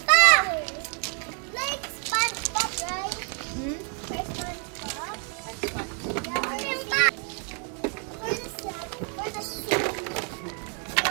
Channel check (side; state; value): left; quieter; 39.9 dB